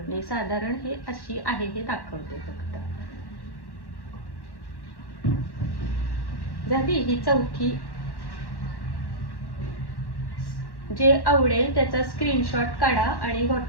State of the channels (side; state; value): right; late; 1.1 ms